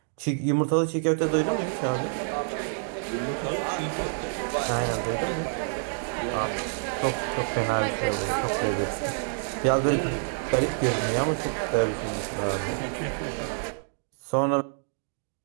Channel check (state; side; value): silent; left; digital silence